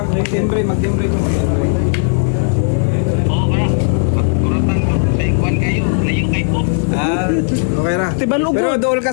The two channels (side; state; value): right; silent; digital silence